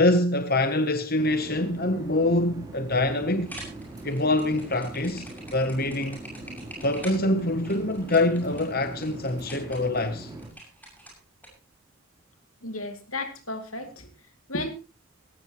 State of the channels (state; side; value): normal; both; correlation 0.22